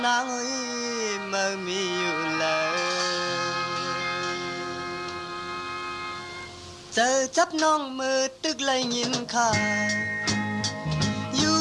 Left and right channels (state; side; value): identical; both; correlation 1.00